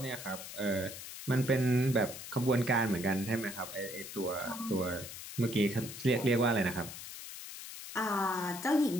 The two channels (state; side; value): noise; left; hiss, 11 dB below the sound